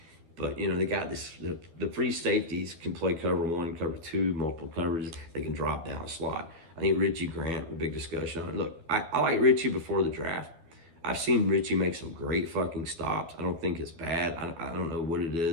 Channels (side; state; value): left; late; 12 ms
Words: But you know, they got this. The free safeties can play cover one, cover two, multiple coverages. They can drop down a slot. I think Richie Grant, a big discussion on it. Look, I like Richie before the draft. I've seen Richie make some great fucking stops. I don't think it's bad. I don't know what it